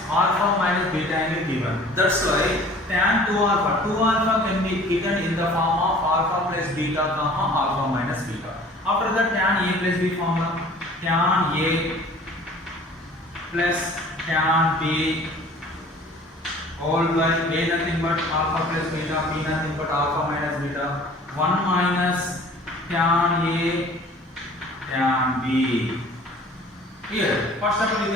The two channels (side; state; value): both; normal; correlation 0.48